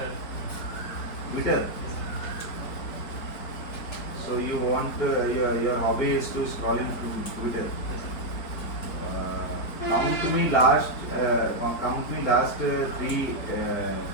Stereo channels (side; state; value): right; late; 4.4 ms